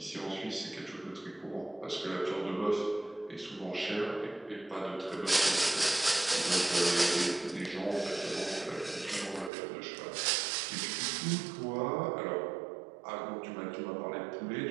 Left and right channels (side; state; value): left; drops out; at 9.5 s